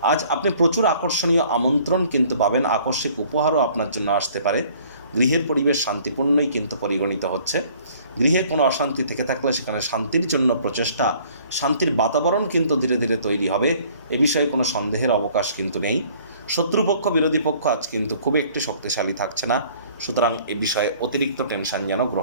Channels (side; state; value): both; inverted; correlation -0.56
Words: আজ আপনি প্রচুর আকর্ষণীয় আমন্ত্রণ কিন্তু পাবেন। আকস্মিক উপহারও আপনার জন্য আসতে পারে। গৃহের পরিবেশ শান্তিপূর্ণই কিন্তু পরিগণিত হচ্ছে। গৃহে কোনো অশান্তি থেকে থাকলে সেখানে শান্তির জন্য প্রচেষ্টা, শান্তির বাতাবরণ কিন্তু ধীরে ধীরে তৈরি হবে। এ বিষয়ে কোনো সন্দেহের অবকাশ কিন্তু নেই। শত্রুপক্ষ, বিরোধী পক্ষ আজ কিন্তু খুব একটি শক্তিশালী থাকছে না। সুতরাং এ বিষয়ে অতিরিক্ত টেনশন যেন